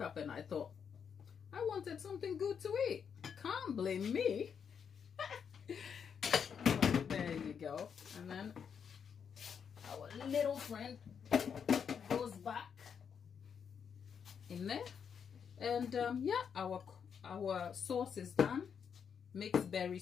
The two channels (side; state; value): right; quieter; 7.1 dB